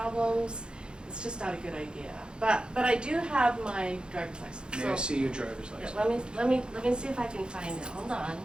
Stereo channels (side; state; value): left; late; 0.050 ms